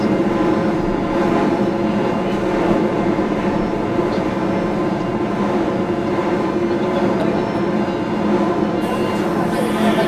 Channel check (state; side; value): identical; both; correlation 1.00